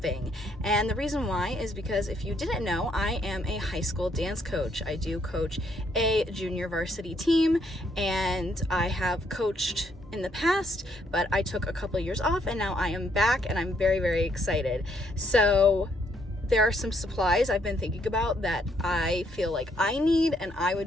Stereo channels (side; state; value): both; normal; correlation 0.71